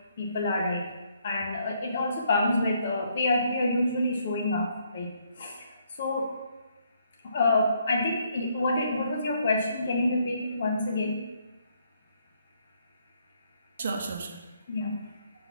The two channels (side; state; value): both; inverted; correlation -0.71